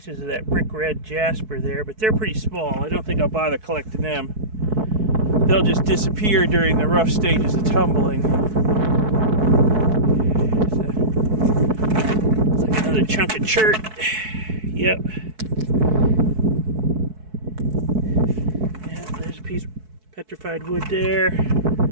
of that brick red Jasper there, but they're pretty small. I don't think I'll bother collecting them. They'll just disappear during the rough stages of tumbling. It's like another chunk of chert. Yep. Yeah, there's a piece of petrified wood there.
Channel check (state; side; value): late; left; 4.6 ms